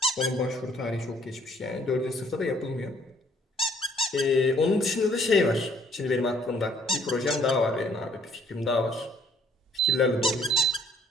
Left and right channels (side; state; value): both; normal; correlation 0.62